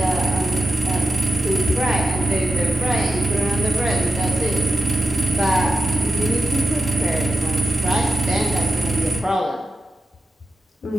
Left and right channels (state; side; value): normal; both; correlation 0.91